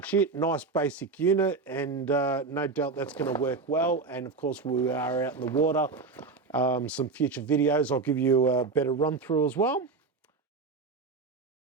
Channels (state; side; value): quieter; left; 4.2 dB